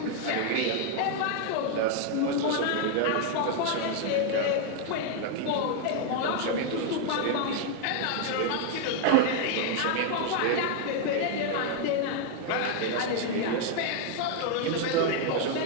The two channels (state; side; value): different; both; correlation 0.00